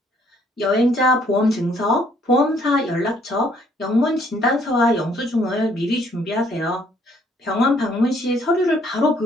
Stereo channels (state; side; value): normal; both; correlation 0.65